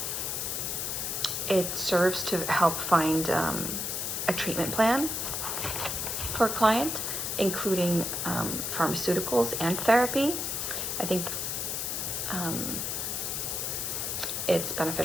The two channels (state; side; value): noise; left; hiss, 2 dB below the sound